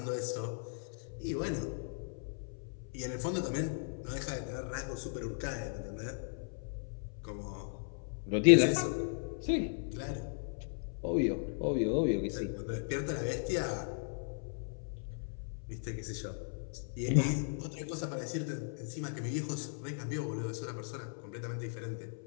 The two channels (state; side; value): silent; right; 53 dB below the other